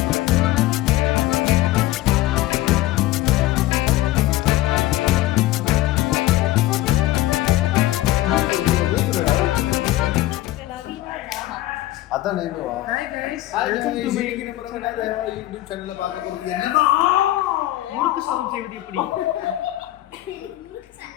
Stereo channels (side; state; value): right; quieter; 15.9 dB